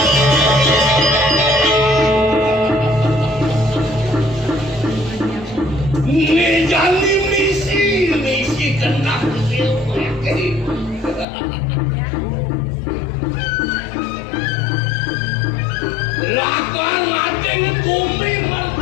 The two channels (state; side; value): drops out; right; at 11.2 s